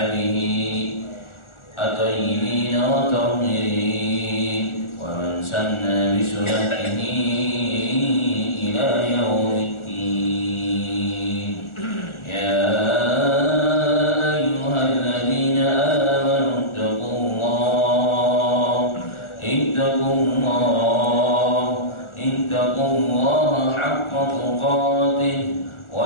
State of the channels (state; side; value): late; right; 1.4 ms